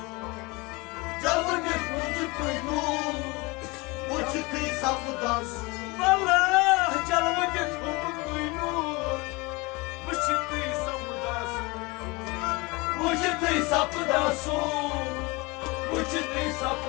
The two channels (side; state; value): right; quieter; 25.3 dB